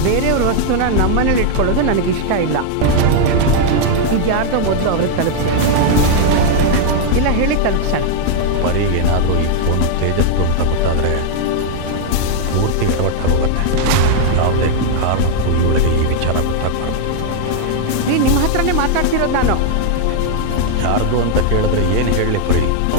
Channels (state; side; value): different; both; correlation 0.00